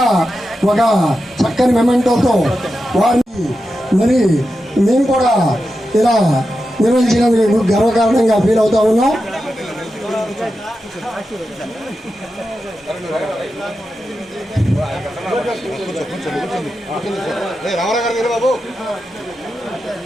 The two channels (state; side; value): normal; both; correlation 0.90